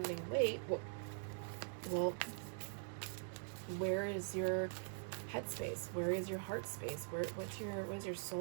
weight, well, where is your headspace? Where is your heart space? What's your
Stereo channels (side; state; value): left; silent; digital silence